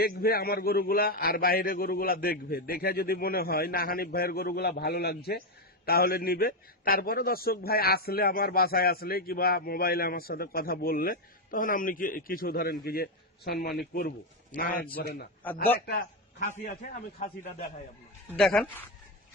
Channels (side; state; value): both; normal; correlation 0.07